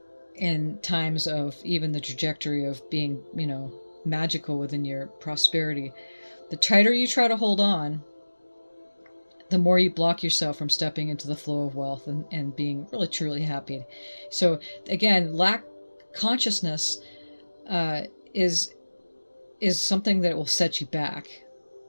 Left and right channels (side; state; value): both; inverted; correlation -1.00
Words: in times of even the trajectory of being, magical within your prosperity. The tighter you try to hold on, the more you block yourself from stepping into the flow of wealth and being really truly happy. So again, lack consciousness uh, is something that will set you back,